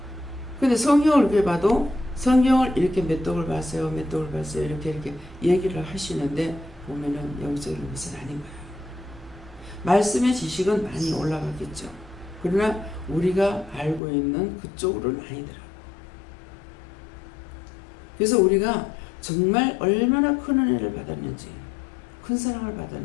근데 성경을 이렇게 봐도 성경을 이렇게 몇 독을 봤어요. 몇 독을 봤어요. 이렇게 얘기를 하시는데 보면은 영적인 것은 아닌 거예요. 말씀의 지식은 많이 올라가겠죠. 그러나 우리가 알고 있는 그쪽으로는 아니더라고요. 그래서 우리가 정말 얼마나 큰 은혜를 받았는지, 큰 사랑을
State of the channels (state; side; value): drops out; right; at 14.0 s